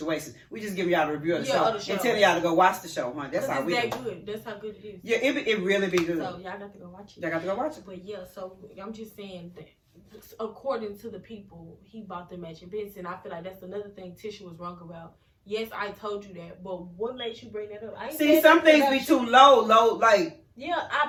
We just give y'all a review of the show and tell y'all to go watch the show, huh? That's how we do. Good. That's how good it is. Yeah, it really be good. So y'all got to go watch it. Y'all got to go watch it. But yeah, so I'm just saying that according to the people, he bought the matching bits, and I feel like that's another thing Tisha was wrong about. Yes, I told you that, but what makes you bring that up? See, some things be too low, like. Yeah,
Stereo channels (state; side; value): identical; both; correlation 1.00